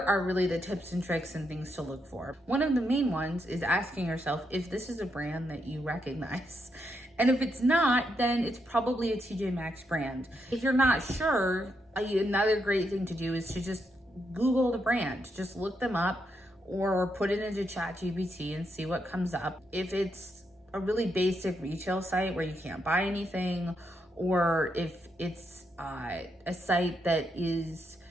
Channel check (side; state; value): both; normal; correlation 0.80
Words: really the tips and tricks and things to look for. One of the main ones is asking yourself if this is a brand that you recognize. And if it's not, then it's probably a TJ Maxx brand. If you're not sure, another great thing to do is to just Google the brand. Just look them up or put it into ChatGPT and see what comes up. If it's a really basic retail site where you can't buy anything, or if it's a site that is